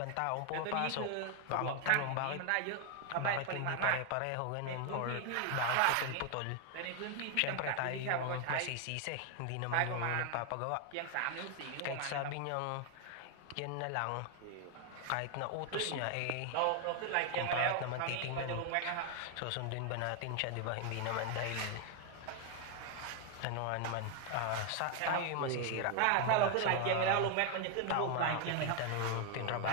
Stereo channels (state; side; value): different; both; correlation 0.01